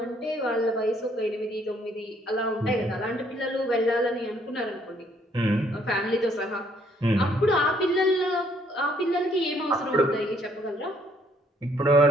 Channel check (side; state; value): both; normal; correlation 0.66